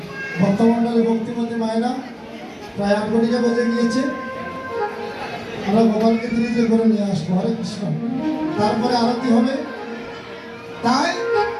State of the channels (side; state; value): both; identical; correlation 1.00